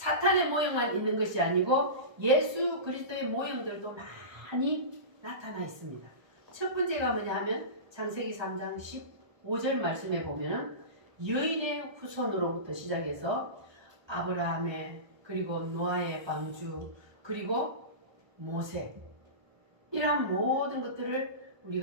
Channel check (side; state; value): left; late; 1.2 ms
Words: 모형만 있는 것이 아니고 예수 그리스도의 모형들도 많이 나타나 있습니다. 첫 번째가 뭐냐 하면 창세기 3장 15절 말씀에 보면은 여인의 후손으로부터 시작해서 아브라함의 그리고 노아의 방주 그리고 모세 이러한 모든 것들을